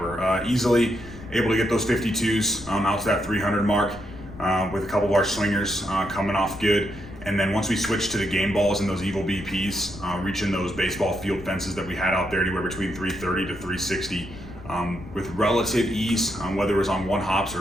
Easily able to get those 52s out to that 300 mark with a couple of our swingers coming off good. And then once we switched to the game balls and those Evil BPs, reaching those baseball field fences that we had out there anywhere between 330 to 360 with relative ease, whether it was on one hops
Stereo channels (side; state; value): left; noise; rumble, 16 dB below the sound